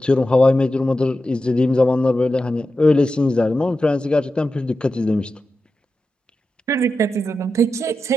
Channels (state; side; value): normal; both; correlation 0.91